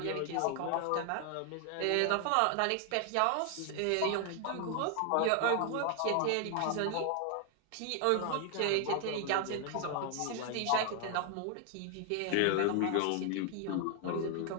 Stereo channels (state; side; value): different; both; correlation 0.00